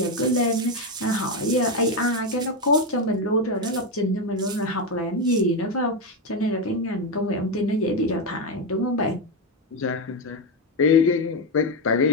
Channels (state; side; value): normal; both; correlation 0.08